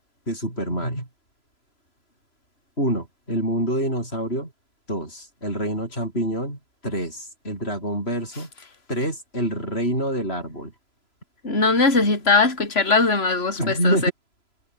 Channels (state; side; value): late; right; 3.0 ms